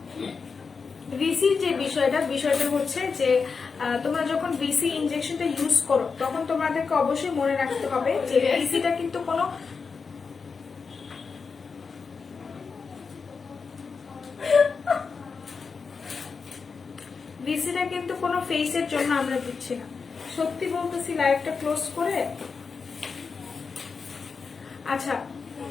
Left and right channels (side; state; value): right; quieter; 5.1 dB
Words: ভিসির যে বিষয়টা হচ্ছে যে তোমরা যখন ভিসি ইনজেকশনটা ইউজ করো তখন তোমাদেরকে অবশ্যই মনে রাখতে হবে যে ভিসিটা কিন্তু কোনো ফেসের জন্য আমরা দিচ্ছি না। সত্যি বলতেছি লাইভটা ক্লোজ করে। আচ্ছা